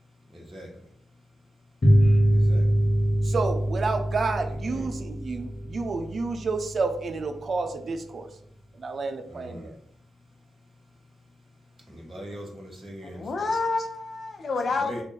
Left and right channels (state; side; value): normal; both; correlation 0.93